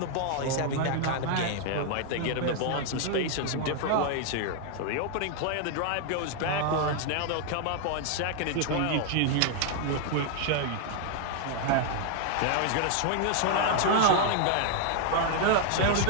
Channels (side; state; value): both; different; correlation 0.00